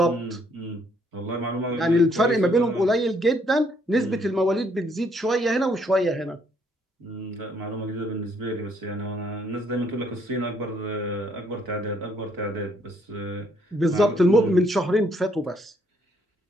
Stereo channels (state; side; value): normal; both; correlation 0.68